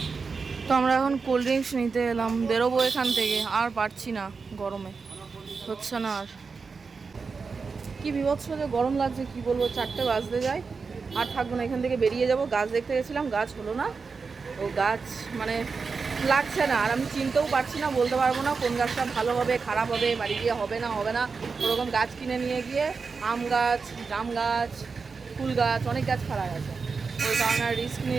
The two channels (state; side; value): quieter; left; 4.9 dB